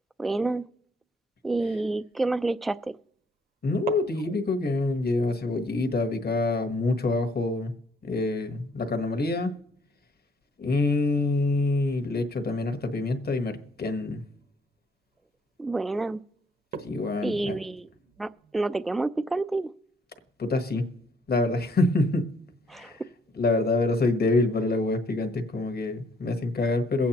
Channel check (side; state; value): both; normal; correlation 0.67